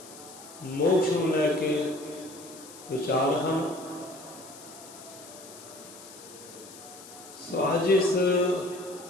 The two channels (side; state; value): left; noise; hiss, 17 dB below the sound